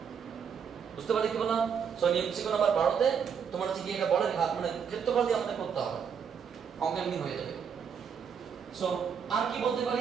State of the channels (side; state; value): left; quieter; 7.0 dB